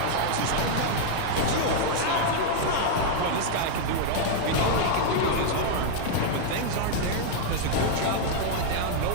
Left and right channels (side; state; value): both; different; correlation -0.01